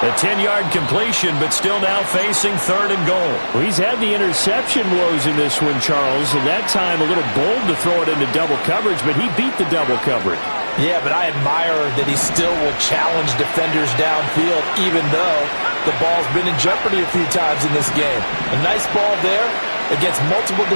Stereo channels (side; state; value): both; inverted; correlation -1.00